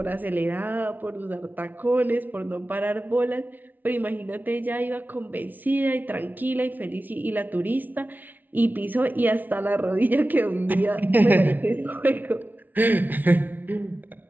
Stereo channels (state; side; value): late; left; 0.083 ms